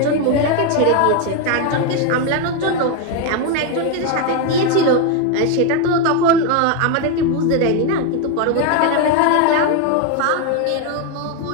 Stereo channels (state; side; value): different; both; correlation 0.01